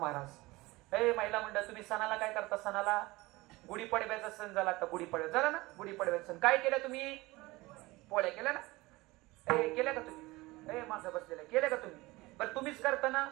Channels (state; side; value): quieter; left; 21.1 dB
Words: महिला मंडळ तुम्ही सणाला काय करता? सणाला गुढीपाडव्याचा सण झाला, आता गुढीपाडवा झाला ना, गुढीपाडव्याचा सण काय केलं तुम्ही? पोळ्या केल्या ना? केल्या का तुम्ही? माझं बसलेलं केलं का तुम्ही? बरं तुम्हीच करता ना